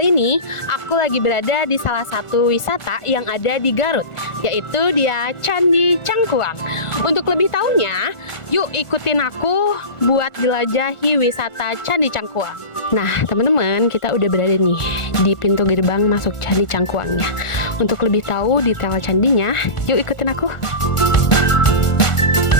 ini aku lagi berada di salah satu wisata yang ada di Garut, yaitu dia Candi Cangkuang. Untuk lebih tahunya, yuk ikutin aku buat jelajahi wisata Candi Cangkuang. Nah teman-teman, kita udah berada nih di pintu gerbang masuk Candi Cangkuangnya. Untuk lebih tahu detail candinya, yuk ikutin aku.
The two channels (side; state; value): right; late; 1.4 ms